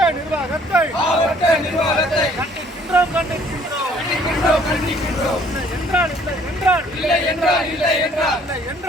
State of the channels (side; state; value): both; normal; correlation 0.60